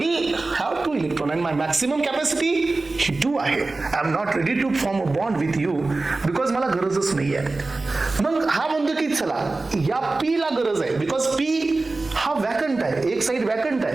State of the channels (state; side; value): quieter; left; 3.4 dB